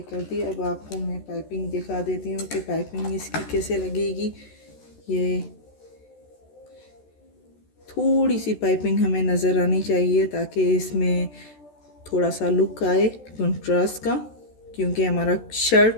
दी। अब आपको मैं पाइपिंग दिखा देती हूँ कि पाइपिंग इसकी कैसे लगेगी। ये थोड़ी सी पाइपिंग हमें नज़र आनी चाहिए ताकि इसमें थोड़ा सा लुक आए कंट्रास्ट का, क्योंकि हमारा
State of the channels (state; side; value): late; right; 14 ms